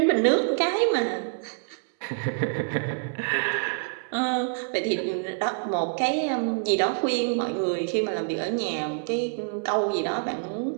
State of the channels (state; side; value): silent; left; digital silence